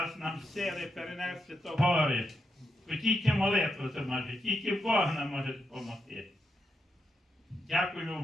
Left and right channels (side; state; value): both; normal; correlation 0.83